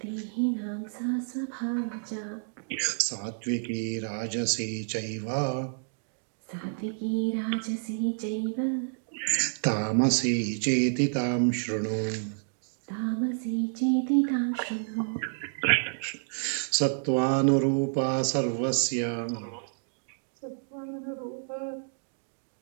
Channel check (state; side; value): silent; left; digital silence